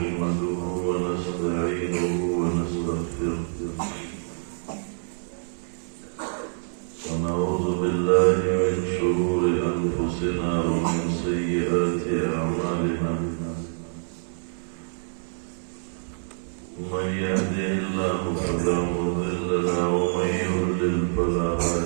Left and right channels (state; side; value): silent; left; 57 dB below the other